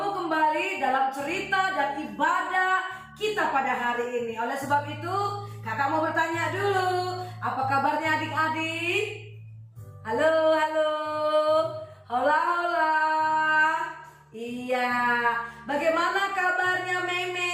kembali dalam cerita dan ibadah kita pada hari ini. Oleh sebab itu, kakak mau bertanya dulu, apa kabarnya adik-adik? Halo, halo, hola, hola. Iya, bagaimana kabarnya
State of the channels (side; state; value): both; identical; correlation 1.00